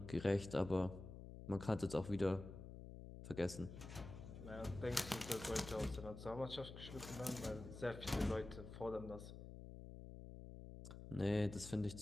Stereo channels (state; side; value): noise; left; hum, 11 dB below the sound